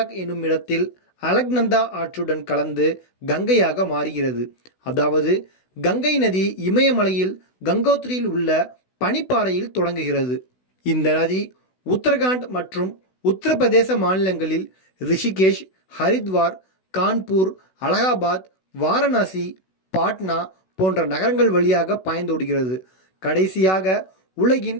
என்னும் இடத்தில் அலக்நந்தா ஆற்றுடன் கலந்து கங்கையாக மாறுகிறது. அதாவது கங்கை நதி இமயமலையில் கங்கோத்ரியில் உள்ள பனிப்பாறையில் தொடங்குகிறது. இந்த நதி உத்தரகாண்ட் மற்றும் உத்தரப்பிரதேச மாநிலங்களில் ரிஷிகேஷ், ஹரித்வார், கான்பூர், அலகாபாத், வாரணாசி, பாட்னா போன்ற நகரங்கள் வழியாக பாய்ந்தோடுகிறது. கடைசியாக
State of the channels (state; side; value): late; right; 16 ms